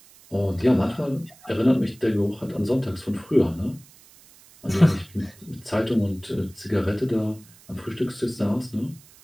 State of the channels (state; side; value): noise; right; hiss, 25 dB below the sound